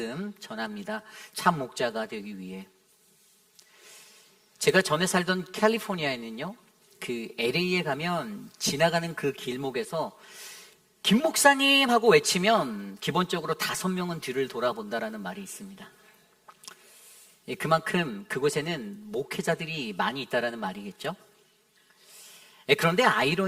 전합니다. 참 목자가 되기 위해. 제가 전에 살던 캘리포니아에는요, 그 LA에 가면 지나가는 그 길목에서 김 목사님 하고 외치면 기본적으로 5명은 뒤를 돌아본다라는 말이 있습니다. 그만큼 그곳에는 목회자들이 많이 있다라는 말이겠죠. 그런데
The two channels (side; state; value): both; identical; correlation 1.00